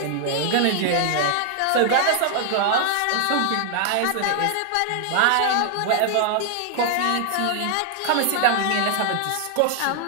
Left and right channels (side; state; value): both; different; correlation 0.00